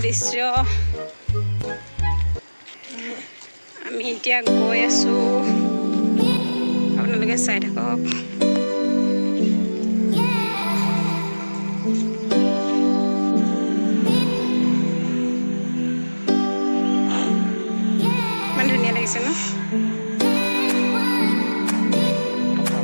দৃশ্য। আমি এতিয়া গৈ আছোঁ, আপোনালোকে চাই থাকক।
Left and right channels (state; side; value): inverted; both; correlation -1.00